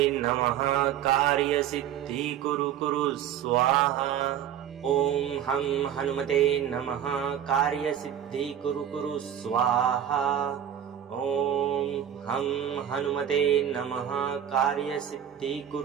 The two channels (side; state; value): left; quieter; 9.9 dB